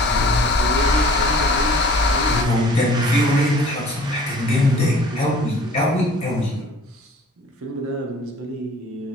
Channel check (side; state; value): both; normal; correlation 0.49